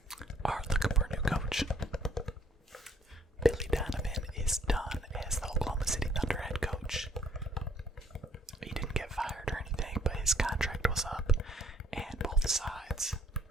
are looking for a new coach. Billy Donovan is done as the Oklahoma City Thunder head coach. He didn't get fired or anything, but his contract was up, and both sides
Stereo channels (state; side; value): normal; both; correlation 0.63